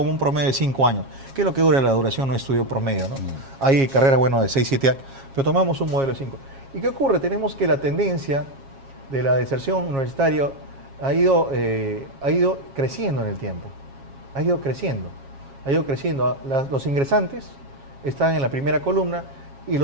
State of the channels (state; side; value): late; left; 7.4 ms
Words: un promedio de 5 años, que es lo que dura la duración de un estudio promedio, ¿no? Hay carreras, bueno, de 6, 7 años, pero tomamos un modelo de 5. ¿Y qué ocurre? Tenemos que la tendencia de la deserción universitaria ha ido creciendo en el tiempo, ha ido creciendo. Los ingresantes están en la primera columna y